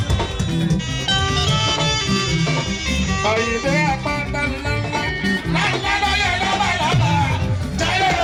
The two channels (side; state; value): both; identical; correlation 1.00